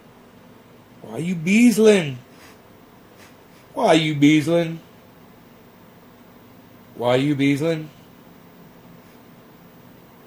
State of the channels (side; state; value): both; identical; correlation 1.00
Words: Why you beesling? Why you beesling? Why you beesling?